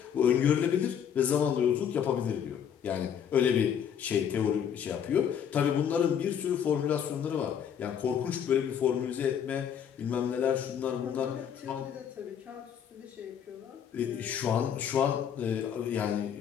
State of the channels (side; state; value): right; quieter; 8.4 dB